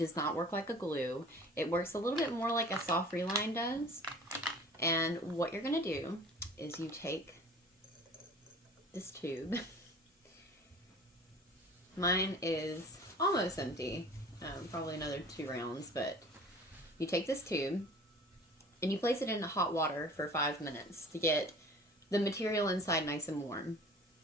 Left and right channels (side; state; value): both; normal; correlation 0.45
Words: not work like a glue. It works a little bit more like a soft reline does. And what you're going to do is you take this tube. Mine is almost empty, probably another 2 rounds, but you take this tube and you place it in hot water for 5 minutes to get the material inside nice and warm.